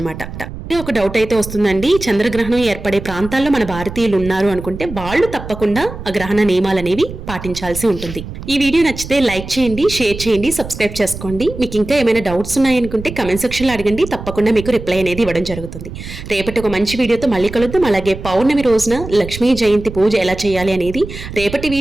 ఒక డౌట్ అయితే వస్తుందండి, చంద్రగ్రహణం ఏర్పడే ప్రాంతాల్లో మన భారతీయులు ఉన్నారు అనుకుంటే వాళ్ళు తప్పకుండా ఆ గ్రహణ నియమాలు అనేవి పాటించాల్సి ఉంటుంది. ఈ వీడియో నచ్చితే లైక్ చేయండి, షేర్ చేయండి, సబ్స్క్రైబ్ చేసుకోండి. మీకు ఇంకా ఏమైనా డౌట్స్ ఉన్నాయనుకుంటే కమెంట్ సెక్షన్లో అడగండి, తప్పకుండా మీకు రిప్లై అనేది ఇవ్వడం జరుగుతుంది. రేపటి ఒక మంచి వీడియోతో మళ్ళీ కలుద్దాం. అలాగే పౌర్ణమి రోజున లక్ష్మీ జయంతి పూజ ఎలా చేయాలి అనేది రేపటి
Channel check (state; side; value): noise; right; rumble, 11 dB below the sound